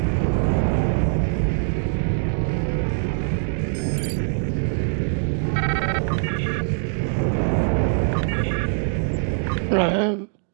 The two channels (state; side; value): silent; left; digital silence